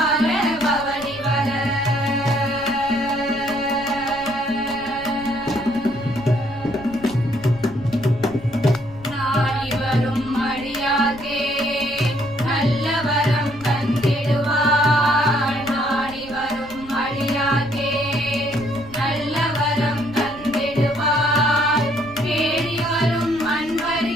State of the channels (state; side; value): noise; left; rumble, 18 dB below the sound